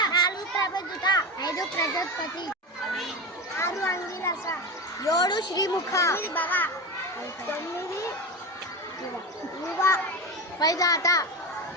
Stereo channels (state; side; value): normal; both; correlation 0.22